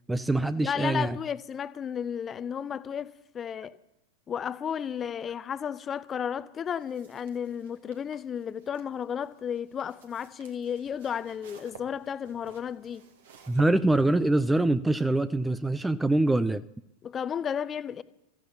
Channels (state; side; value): normal; both; correlation 0.86